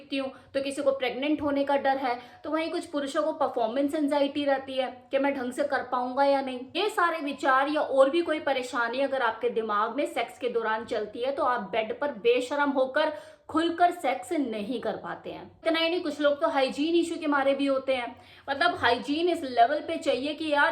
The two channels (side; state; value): both; identical; correlation 1.00